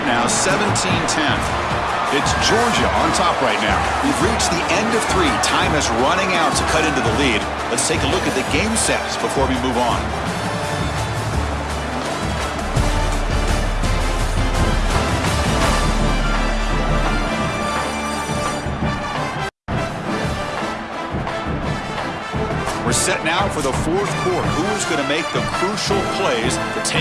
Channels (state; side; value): identical; both; correlation 1.00